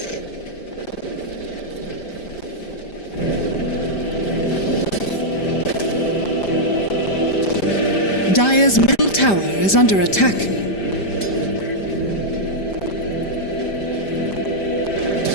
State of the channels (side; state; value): right; late; 5.0 ms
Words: Dire's middle tower is under attack.